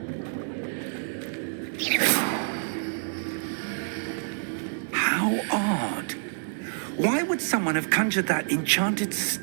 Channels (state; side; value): silent; left; digital silence